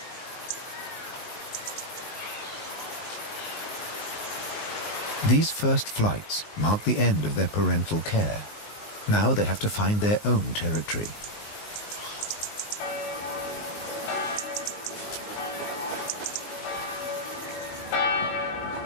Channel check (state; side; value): late; right; 19 ms